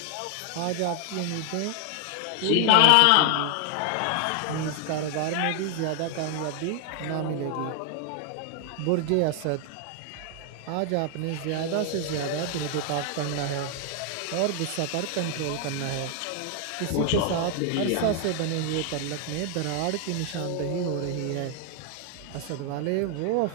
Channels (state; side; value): different; both; correlation 0.00